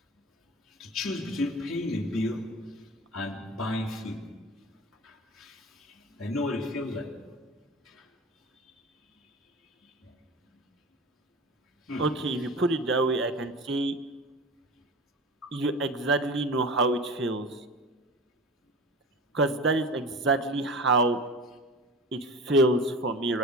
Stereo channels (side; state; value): both; normal; correlation 0.34